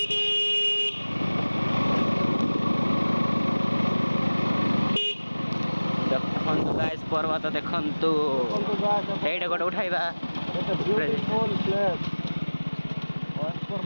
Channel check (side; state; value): both; inverted; correlation -1.00